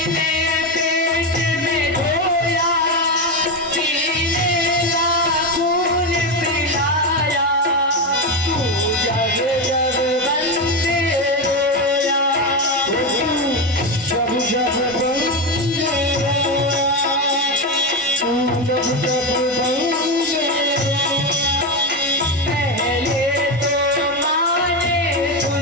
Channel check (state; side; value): normal; both; correlation 0.13